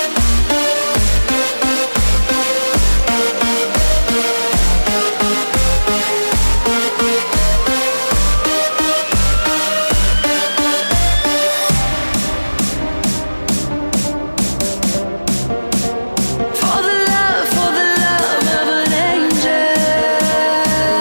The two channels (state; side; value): inverted; both; correlation -1.00